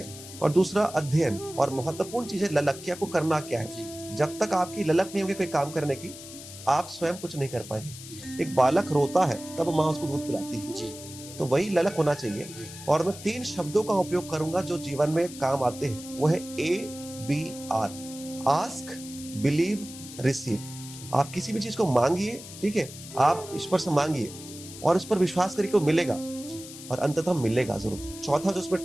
और दूसरा अध्ययन, और महत्वपूर्ण चीज है ललक की, आपको करना क्या है। जब तक आपकी ललक नहीं होगी कोई काम करने की, आप स्वयं कुछ नहीं कर पाएंगे। एक बालक रोता है तब माँ उसको दूध पिलाती है, तो वही ललक होना चाहिए। और मैं 3 शब्दों का उपयोग करूंगा जो जीवन में काम आते हैं, वो है ABR, आस्क, बिलीव, रिसीव। आप किसी भी चीज को मांगिए, ठीक है, आप ईश्वर से मांगिए और उस पर विश्वास करिए कि वो मिलेगा और अंततः मिलेगा जरूर। चौथा जो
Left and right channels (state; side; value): noise; left; hiss, 14 dB below the sound